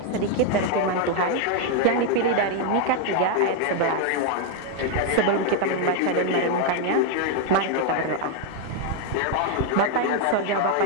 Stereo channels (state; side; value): different; both; correlation 0.01